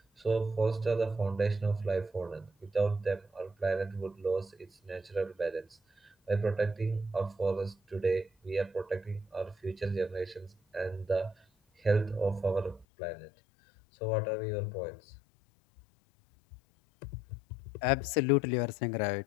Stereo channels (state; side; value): drops out; right; at 12.9 s